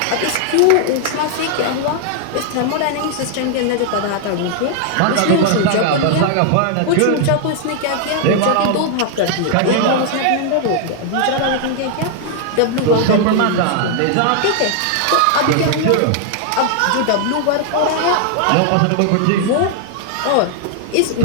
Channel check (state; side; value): different; both; correlation 0.00